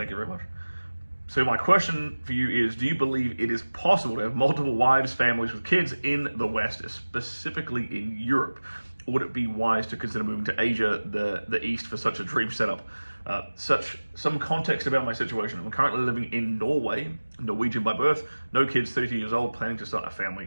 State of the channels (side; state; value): both; inverted; correlation -1.00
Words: you very much. So my question for you is, do you believe it is possible to have multiple wives, families with kids in the West, specifically in Europe? Or would it be wise to consider moving to Asia, the East, for such a dream setup? Some context about my situation. I'm currently living in Norway, Norwegian by birth, no kids, 32 years old, planning to start a